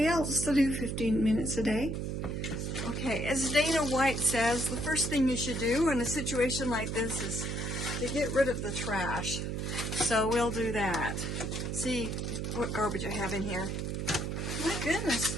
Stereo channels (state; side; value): noise; right; hum, 2 dB below the sound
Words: else to do 15 minutes a day. Okay, as Dana White says, the first thing you should do in a situation like this is to get rid of the trash. So we'll do that. See what garbage I have in here. My goodness,